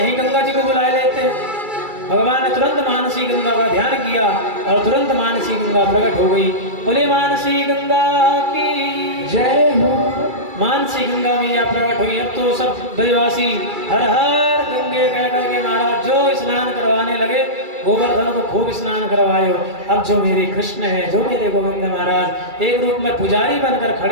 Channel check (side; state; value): left; late; 2.3 ms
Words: गंगा जी को बुलाए लेते हैं। भगवान ने तुरंत मानसी गंगा का ध्यान किया और तुरंत मानसी गंगा प्रकट हो गई। बोले मानसी गंगा की जय हो। मानसी गंगा मैया प्रकट हुई। अब तो सब ब्रजवासी हर हर गंगे कह करके महाराज जो स्नान करवाने लगे। गोवर्धन को खूब स्नान करवायो। अब जो मेरे कृष्ण है, जो मेरे गोविंद महाराज एक रूप में पुजारी बनकर